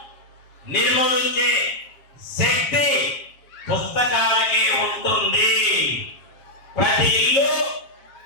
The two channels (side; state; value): right; late; 7.7 ms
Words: నిర్మూలించే శక్తి పుస్తకాలకి ఉంటుంది. ప్రతి ఇల్లు